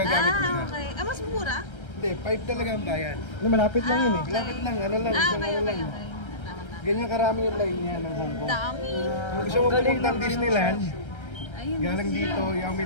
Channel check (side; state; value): right; late; 1.3 ms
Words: mo siya. Okay. Mas mura? Hindi, 5 talaga ang bayan. Malapit lang yun eh. Malapit lang, ano lang, isang okay, ano okay. lang. Ganyan karami yung line niya ng Hong Kong. Dami. Kung gusto mo pumunta ng Disneyland, Ayun, galing dito, Yao